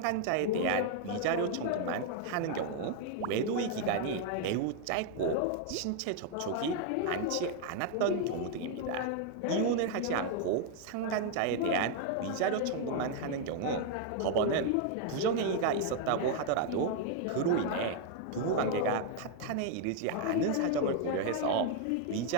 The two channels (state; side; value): different; both; correlation 0.00